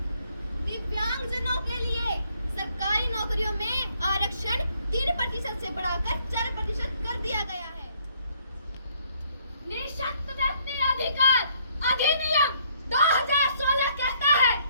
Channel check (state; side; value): inverted; both; correlation -0.66